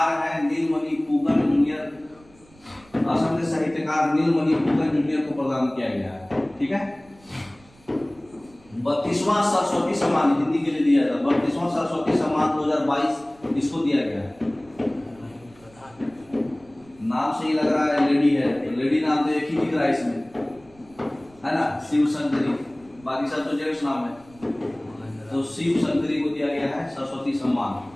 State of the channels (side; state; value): right; noise; rumble, 27 dB below the sound